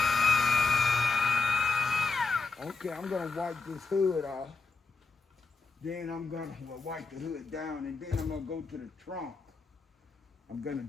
Okay, I'm gonna wipe this hood off. Then I'm gonna wipe the hood down, and then I'm gonna go to the trunk. I'm gonna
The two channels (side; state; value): right; quieter; 4.1 dB